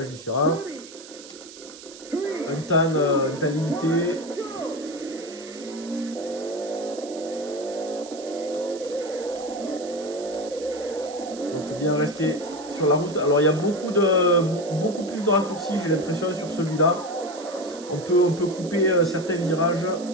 différents. Un temps limité. Donc il faut bien rester sur la route. Alors il y a beaucoup plus de raccourcis, j'ai l'impression, sur celui-là. On peut couper certains virages.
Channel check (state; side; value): noise; right; hiss, 17 dB below the sound